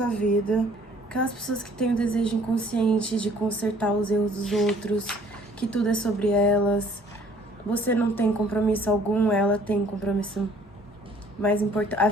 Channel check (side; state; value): both; normal; correlation 0.57